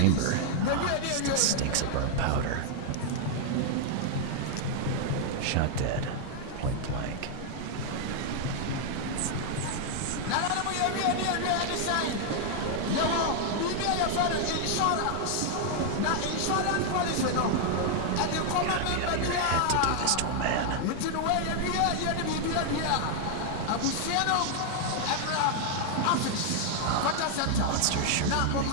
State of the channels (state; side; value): different; both; correlation 0.00